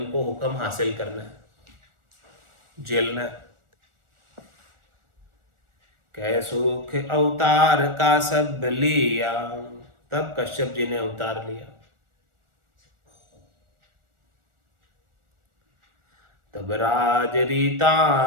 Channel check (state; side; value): late; left; 1.4 ms